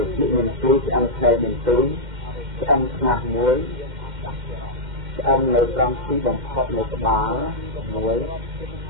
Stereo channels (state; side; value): late; left; 2.1 ms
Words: chuyện miền tây sẽ ăn theo miền tây ăn ngạc muối ăn lấy rong xí bằng khóc lấy cái bá muối